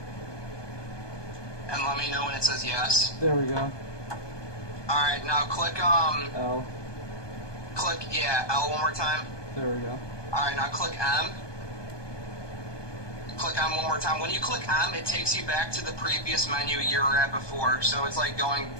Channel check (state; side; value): late; right; 1.2 ms